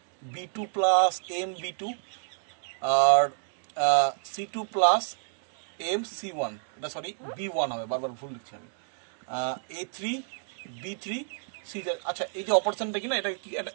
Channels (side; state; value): left; silent; digital silence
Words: b2 plus M b2 আর c2 প্লাস এম c1। এটা সরি b1 হবে, বারবার ভুল লিখছি আমি। a3 b3 c3। আচ্ছা, এই যে অপারেশনটা কি না,